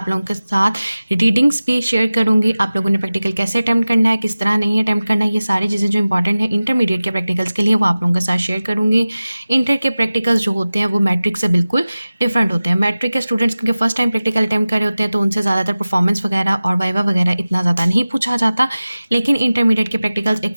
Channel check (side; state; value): both; inverted; correlation -0.96